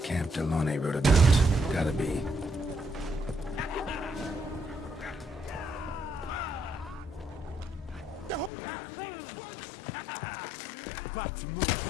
Delone wrote about. Gotta be. The whole of us! At once! But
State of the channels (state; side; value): drops out; right; at 8.5 s